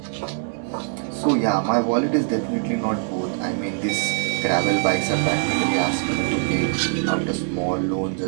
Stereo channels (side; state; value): left; silent; 64 dB below the other